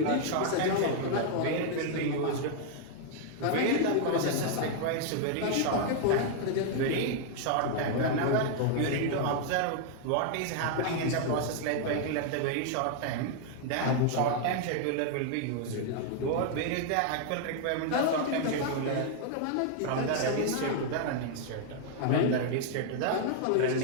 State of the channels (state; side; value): different; both; correlation 0.00